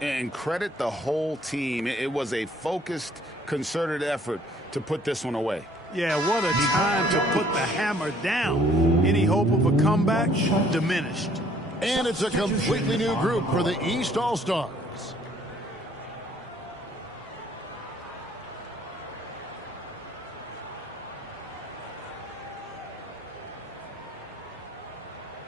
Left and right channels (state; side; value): normal; both; correlation 0.60